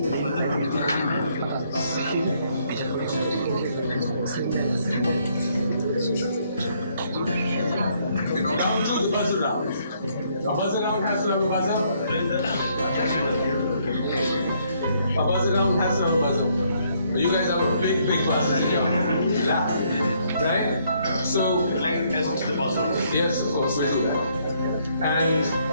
Round two, the buzzer round. A buzzer round has to have a buzzer. A buzzer round has to have a buzzer. You guys have a big buzzer in your lap, right? So, Like test the buzzer. yes, of course, we do that. And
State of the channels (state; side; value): inverted; both; correlation -0.69